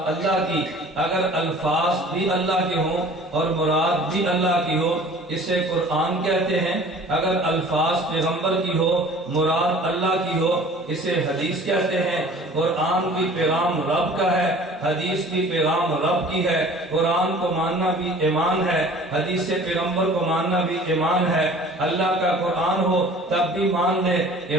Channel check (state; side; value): normal; both; correlation 0.47